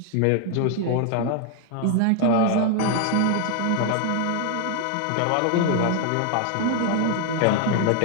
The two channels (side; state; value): both; different; correlation 0.00